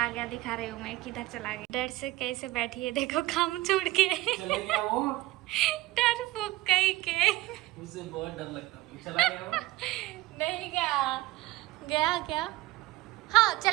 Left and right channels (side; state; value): left; quieter; 18.2 dB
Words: गया। दिखा रही हूँ मैं किधर चला गया, डर से कैसे बैठी है, देखो काम छोड़ के। चले गया वो, डर फूक कहीं के। मुझसे बहुत डर लगता है, चला गया वो। नहीं गया, गया क्या? हाँ